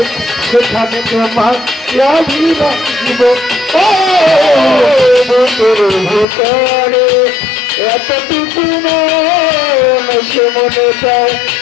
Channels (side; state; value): right; drops out; at 6.2 s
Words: সেখানে তোমার দিব ও বুকের ভিতরে এতটুকু সে মনে চায়